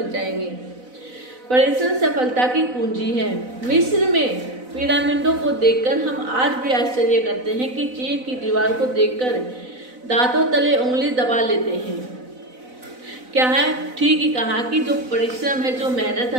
जाएंगे। परिश्रम सफलता की कुंजी है। मिस्र में पिरामिडों को देखकर हम आज भी आश्चर्य करते हैं कि चीन की दीवार को देखकर दांतों तले उंगली दबा लेते हैं। क्या है, ठीक ही कहा कि जो परिश्रम है, जो मेहनत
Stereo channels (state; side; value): late; left; 4.0 ms